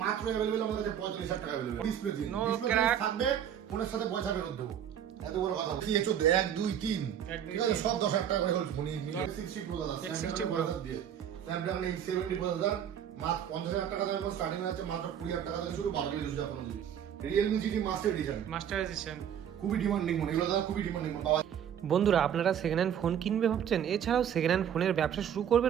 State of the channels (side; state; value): left; quieter; 9.3 dB